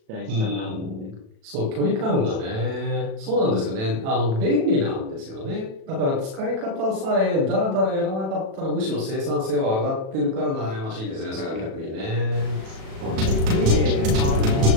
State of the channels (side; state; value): left; late; 37 ms